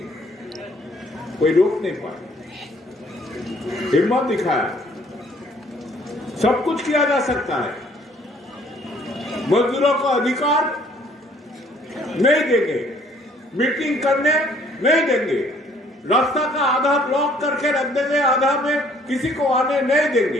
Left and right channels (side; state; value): both; normal; correlation 0.60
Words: कोई रोक नहीं पाया, हिम्मत दिखाया। सब कुछ किया जा सकता है। मजदूरों को अधिकार नहीं देंगे, मीटिंग करने नहीं देंगे, रास्ता का आधा ब्लॉक करके रख देंगे, आधा में किसी को आने नहीं